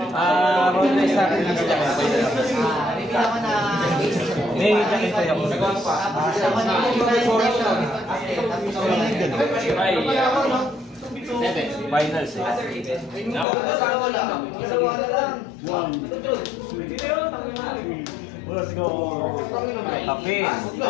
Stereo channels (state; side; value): drops out; right; at 13.5 s